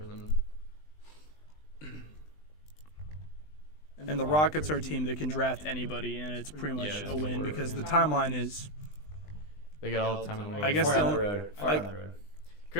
them. And the Rockets are a team that can draft anybody, and it's pretty much Yeah, a win it's because the timeline is. They got all the time in the world. I guess Far the down the only- road. Far I- down the road.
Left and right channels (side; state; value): right; late; 20 ms